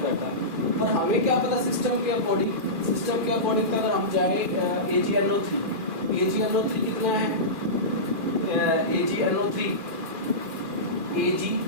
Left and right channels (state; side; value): late; left; 2.4 ms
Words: करता है। पर हमें क्या पता सिस्टम के अकॉर्डिंग अगर हम जाए AgNO3 कितना है, AgNO3 Ag